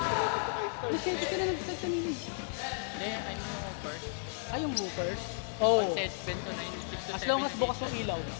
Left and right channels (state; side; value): silent; right; digital silence